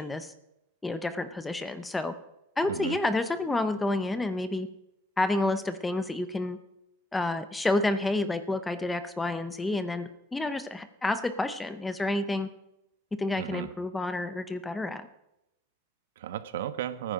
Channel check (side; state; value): both; normal; correlation 0.77